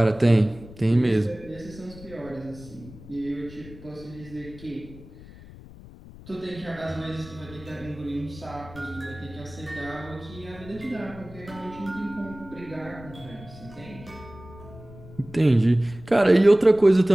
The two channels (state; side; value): noise; left; rumble, 18 dB below the sound